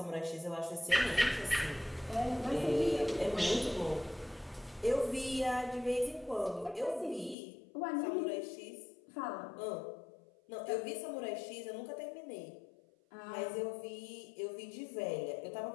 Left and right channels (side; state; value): right; drops out; at 7.4 s